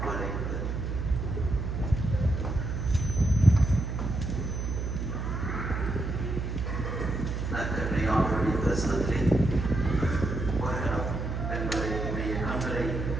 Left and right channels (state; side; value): noise; right; hum, 3 dB below the sound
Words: கொலை நற்கருணையாளருடைய பிரசனத்திலே வருகிறோம் என்பதை உடைய கண்களை